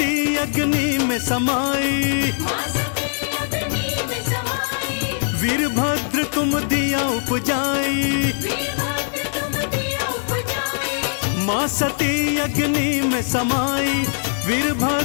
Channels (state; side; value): silent; right; digital silence